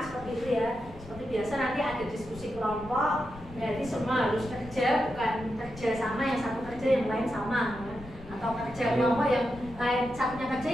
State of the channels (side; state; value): left; noise; rumble, 16 dB below the sound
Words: itu ya. Seperti biasa nanti ada diskusi kelompok, berarti semua harus kerja, bukan kerja sama yang satu kerja yang lain sama, ya. Atau kerja kelompok yang lain satunya kerja